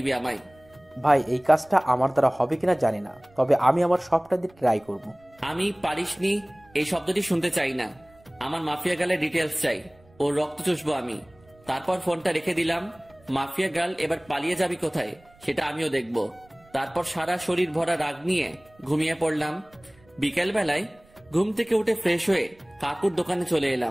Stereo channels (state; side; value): noise; right; rumble, 29 dB below the sound